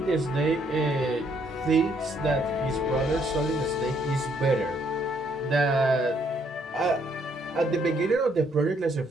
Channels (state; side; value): normal; both; correlation 0.69